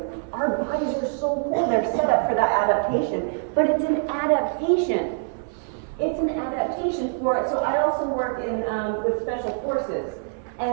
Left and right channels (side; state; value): left; silent; 62 dB below the other